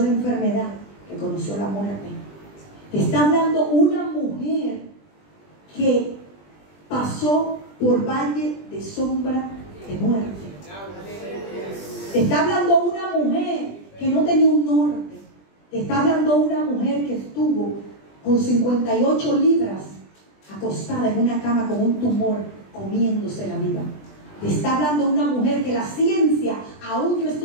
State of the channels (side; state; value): right; late; 20 ms